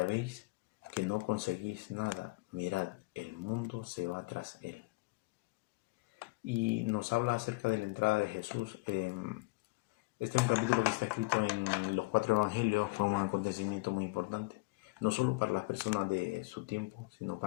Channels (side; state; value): right; quieter; 24.2 dB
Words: veis que no conseguís nada, mirad, el mundo se va tras él. Y nos habla acerca de la entrada de Jesús. Este es un capítulo que está escrito en los 4 evangelios. Fue un acontecimiento muy importante, no solo para las personas de su tiempo, sino